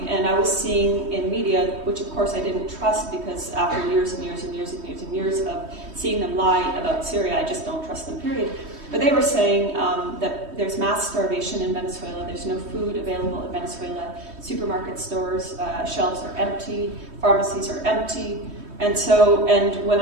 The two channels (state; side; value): late; left; 3.2 ms